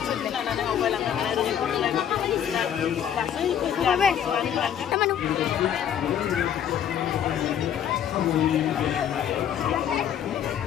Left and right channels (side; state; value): right; quieter; 9.4 dB